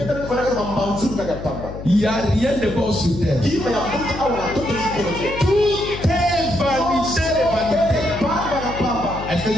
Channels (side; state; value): left; noise; hum, 10 dB below the sound